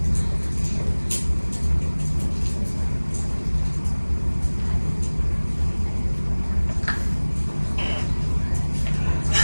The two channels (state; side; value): inverted; both; correlation -1.00